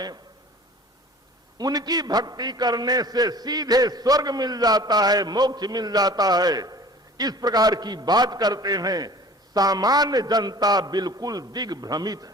उनकी भक्ति करने से सीधे स्वर्ग मिल जाता है, मोक्ष मिल जाता है, इस प्रकार की बात करते हैं। सामान्य जनता बिल्कुल दिग्भ्रमित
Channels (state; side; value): normal; both; correlation 0.45